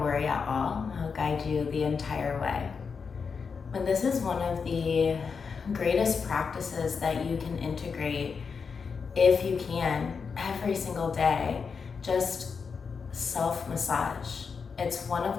at all. I'll guide you the entire way. But this is one of the greatest practices that you can integrate, if you can, every single day. Just self-massage. It's one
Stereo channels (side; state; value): right; quieter; 5.6 dB